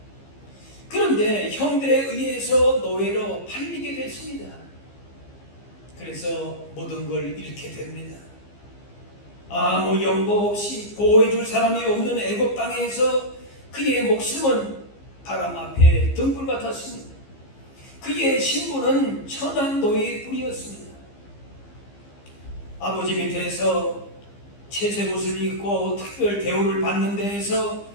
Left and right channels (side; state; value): right; late; 15 ms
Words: 그런데 형들에 의해서 노예로 팔리게 됐습니다. 그래서 모든 걸 잃게 됩니다. 아무 연고 없이 보호해줄 사람이 없는 애굽 땅에서 그의 목숨은 바람 앞에 등불 같았습니다. 그의 신분은 천한 노예일 뿐이었습니다. 아버지 밑에서 채색 옷을 입고 특별 대우를 받는 데에서